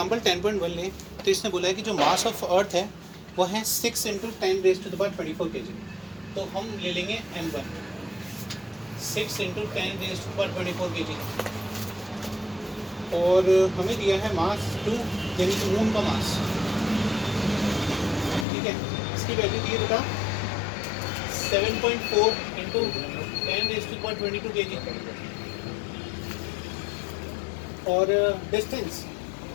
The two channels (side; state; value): right; drops out; at 18.4 s